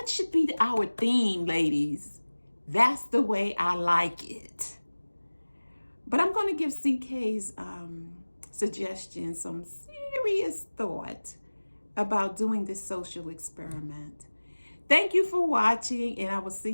should be our theme, ladies. That's the way I like it. But I'm going to give CK's suggestion some serious thought about doing this social experiment. Thank you for watching, and I will see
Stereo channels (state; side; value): inverted; both; correlation -1.00